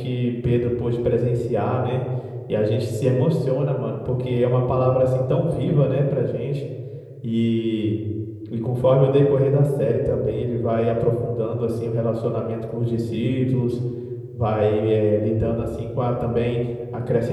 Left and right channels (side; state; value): both; identical; correlation 1.00